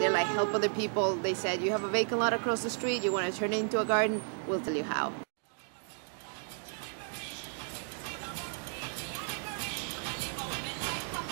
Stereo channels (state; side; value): silent; left; 55 dB below the other